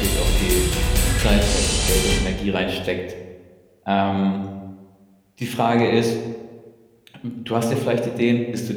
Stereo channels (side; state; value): both; identical; correlation 1.00